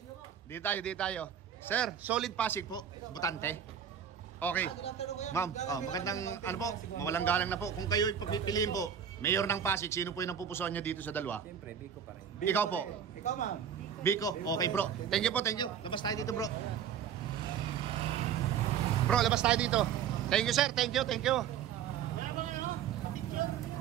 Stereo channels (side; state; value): left; quieter; 8.5 dB